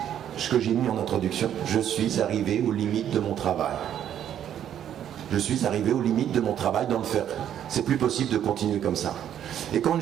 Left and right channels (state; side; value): quieter; left; 10.1 dB